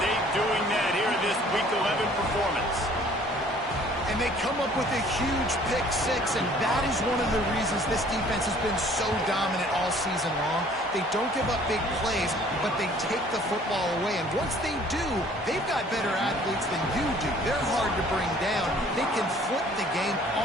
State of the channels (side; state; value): both; normal; correlation 0.55